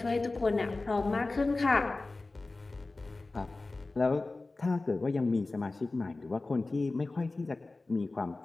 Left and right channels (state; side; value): quieter; right; 3.3 dB